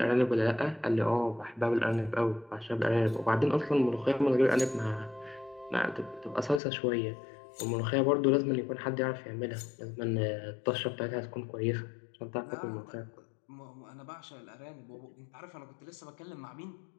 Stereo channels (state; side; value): drops out; right; at 6.6 s